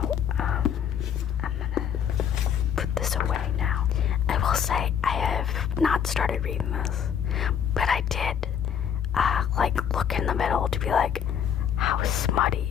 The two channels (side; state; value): right; quieter; 8.4 dB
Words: I'm gonna put this away now. I will say I have not started reading this, but I did, look in the middle to be like, how